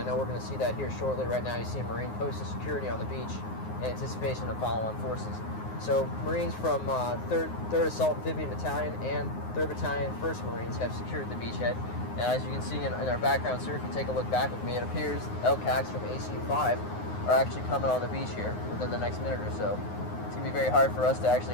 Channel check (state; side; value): late; right; 9.6 ms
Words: know we're going to see that here shortly. Right now you see a Marine posted security on the beach in anticipation of follow-on forces. So Marines from 3rd Assault Amphibian Battalion and 3rd Battalion 1st Marines have secured the beachhead. And as you can see in our background, sir, if you take a look back with me, it appears LCACs from ACU-5 are actually coming on the beach here within the next minute or so. It's going to be very hard for us to